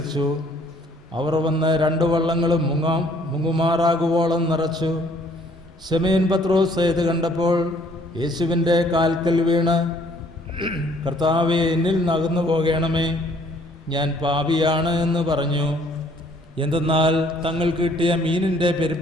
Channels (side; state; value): both; normal; correlation 0.61